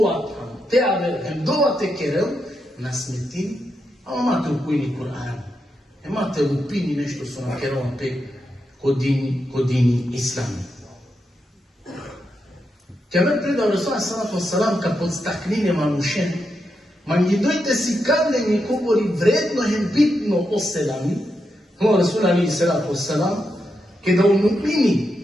uvatam, te aver, dova te kerel, na smetini, a imate u kujini Kur'an. Imate u pini nešto su na kerova pe kod dini islami. Kjaver predao Resula salatu wasalam kad podstaknine manušen, manji dojte si kad ne mi govori vredno hem bitno o selami, no Resula alaihi salatu wasalam, kada u mu'mini,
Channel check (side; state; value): both; normal; correlation 0.85